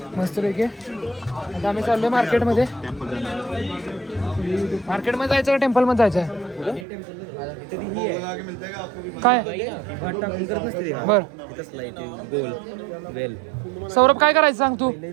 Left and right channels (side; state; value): left; drops out; at 6.9 s